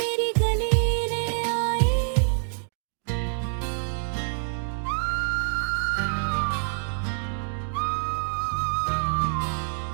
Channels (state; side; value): silent; left; digital silence